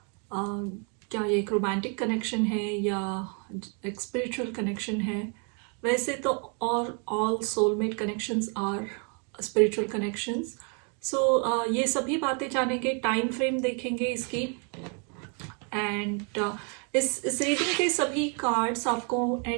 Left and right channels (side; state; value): left; quieter; 37.5 dB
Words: क्या ये एक रोमांटिक कनेक्शन है या एक स्पिरिचुअल कनेक्शन है। वैसे तो all soulmate connections are spiritual connections. So ये सभी बातें जानेंगे, टाइम फ्रेम देखेंगे इसकी। एंड इस रीडिंग के सभी कार्ड्स आपको